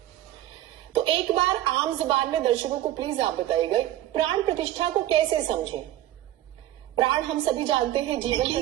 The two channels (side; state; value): left; quieter; 13.7 dB